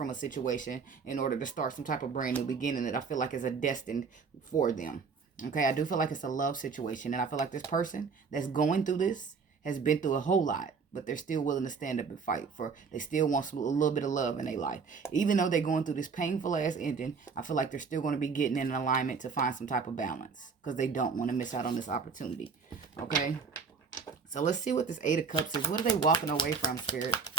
a situation in order to start some type of brand new beginning that I feel like is a destined for them. Okay, I do feel like it's a love situation, and I feel like this person that's going through this has been through a whole lot, but they're still willing to stand up and fight for, they still want a little bit of love in their life. Even though they're going through this painful ass ending, I feel like they're still going to be getting in alignment to find some type of balance because they don't want to miss out on this opportunity. Okay, so let's see what this 8 of Cups is. What are they walking away from, Spirit?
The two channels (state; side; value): quieter; left; 5.4 dB